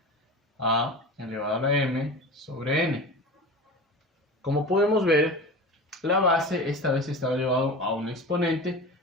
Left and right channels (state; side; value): normal; both; correlation 0.32